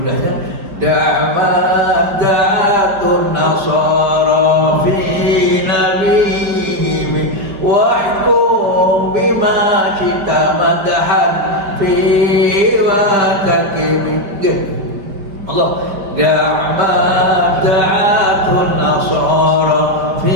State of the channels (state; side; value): late; left; 5.2 ms